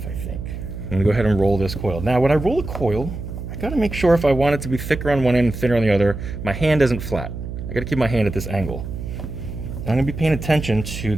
I think. I'm gonna go ahead and roll this coil. Now, when I roll a coil, gotta make sure if I want it to be thicker on one end and thinner on the other, my hand isn't flat. I gotta keep my hand at this angle. I'm gonna be paying attention to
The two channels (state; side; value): noise; right; hum, 7 dB below the sound